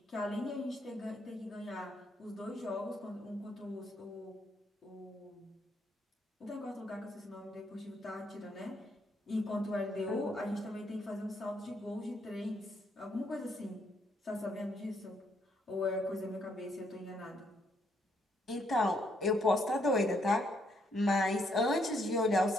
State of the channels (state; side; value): normal; both; correlation 0.73